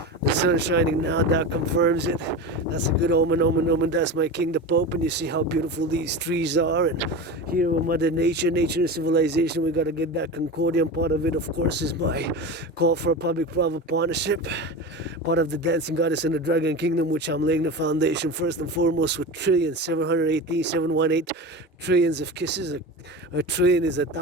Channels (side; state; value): both; normal; correlation 0.27